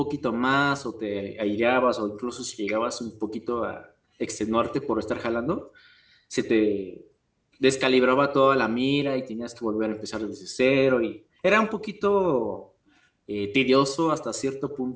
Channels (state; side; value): identical; both; correlation 1.00